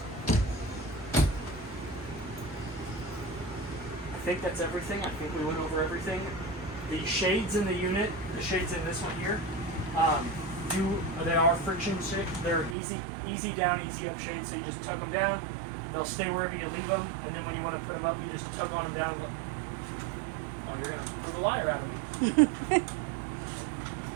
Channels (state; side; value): drops out; left; at 12.8 s